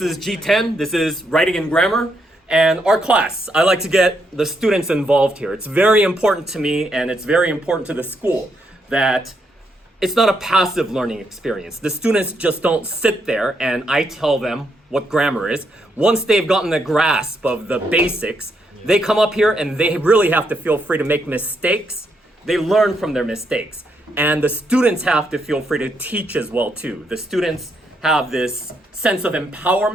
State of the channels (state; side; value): normal; both; correlation 0.78